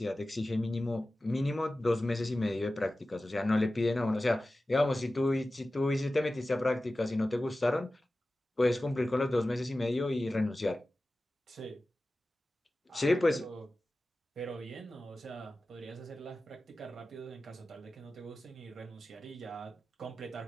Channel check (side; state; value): both; normal; correlation 0.95